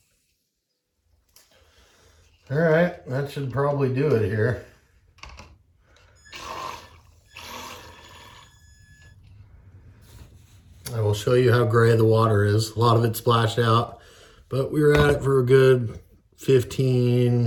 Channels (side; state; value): both; identical; correlation 1.00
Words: All right, that should probably do it here. I will show you how gray the water is. A lot of it splashed out, but we were at it for a good